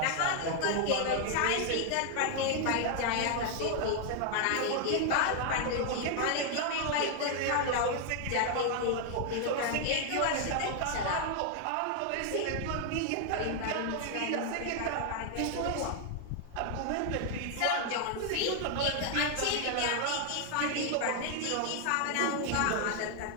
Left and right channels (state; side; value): different; both; correlation 0.00